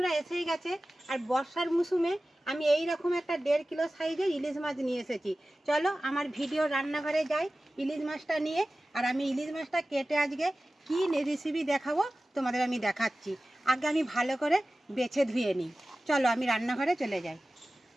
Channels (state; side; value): normal; both; correlation 0.96